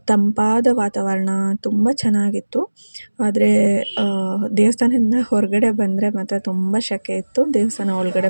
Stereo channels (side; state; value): both; inverted; correlation -1.00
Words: ತಂಪಾದ ವಾತಾವರಣ ತುಂಬ ಚೆನ್ನಾಗಿತ್ತು. ಆದರೆ ದೇವಸ್ಥಾನದಿಂದ ಹೊರಗಡೆ ಬಂದರೆ ಮಾತ್ರ ತುಂಬ ಸೆಕೆ ಇತ್ತು. ದೇವಸ್ಥಾನ ಒಳಗಡೆ